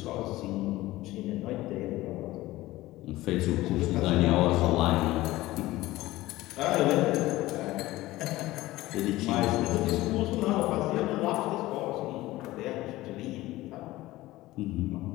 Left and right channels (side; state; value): right; quieter; 17.6 dB